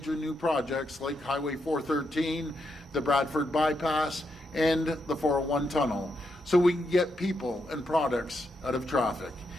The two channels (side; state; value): both; normal; correlation 0.82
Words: new projects like Highway 413, the Bradford Bypass, and the 401 tunnel, so we can get people and products out of traffic.